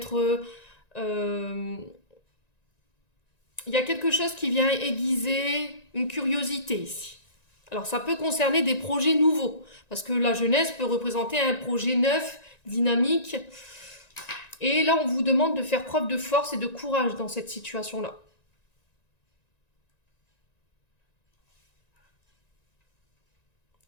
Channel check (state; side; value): late; right; 1.9 ms